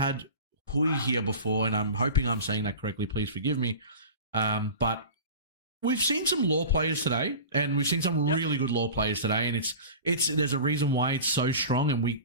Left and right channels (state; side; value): inverted; both; correlation -0.35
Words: Hui here before, and I'm hoping I'm saying that correctly. Please forgive me. But we've seen some law players today, and we've seen some really good law players today, and it's there's a reason why it's so strong, and